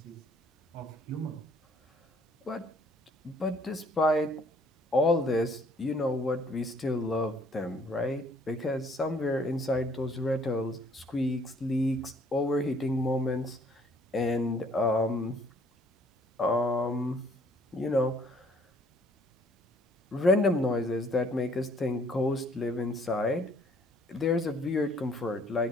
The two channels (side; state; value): both; normal; correlation 0.61